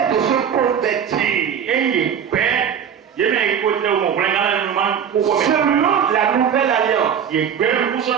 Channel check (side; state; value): left; quieter; 8.1 dB